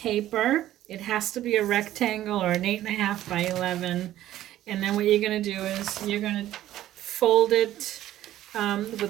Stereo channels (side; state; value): left; quieter; 13.4 dB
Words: It has to be a rectangle or an 8.5 by 11. And then what you're going to do is you're going to fold it